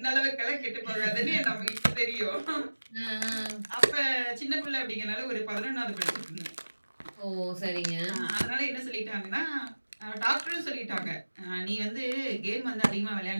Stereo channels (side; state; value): both; inverted; correlation -1.00